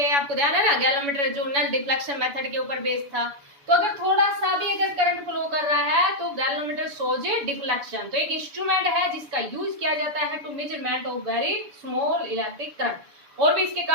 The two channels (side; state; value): left; late; 7.1 ms